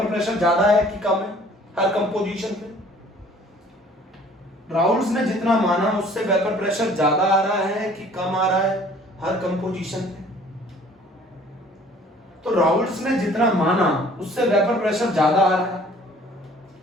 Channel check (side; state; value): both; normal; correlation 0.53